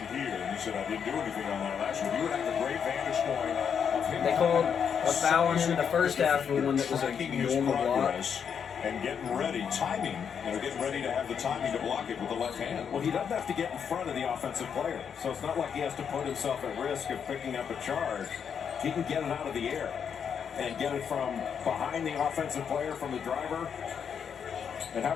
here, and he said, I didn't do anything on that last one. You would have a great vantage point of him. They called a foul on him in the first half for one that was a Tracking his normal block. progress and getting ready, timing, getting ready to have the timing to block it with the left hand. Well, he doesn't have to get in front of the offensive player, so it's not like he has to put himself at risk of picking up a charge. He can get it out of the air and get it from behind the offensive player, from the driver. And how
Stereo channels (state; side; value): quieter; right; 7.3 dB